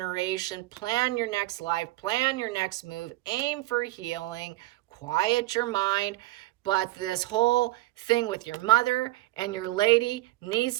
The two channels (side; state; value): left; quieter; 18.6 dB